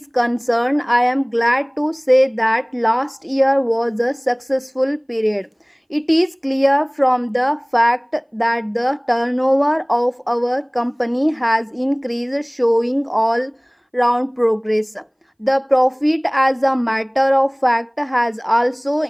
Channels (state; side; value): identical; both; correlation 1.00